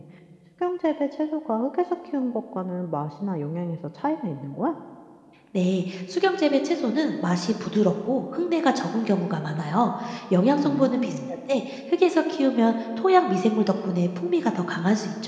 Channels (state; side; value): identical; both; correlation 1.00